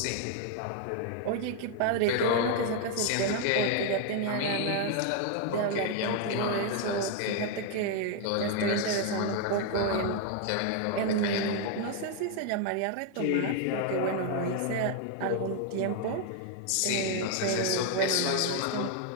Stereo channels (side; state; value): both; different; correlation 0.00